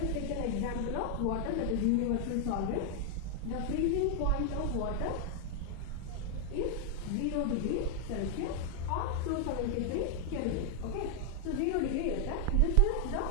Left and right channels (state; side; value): different; both; correlation 0.00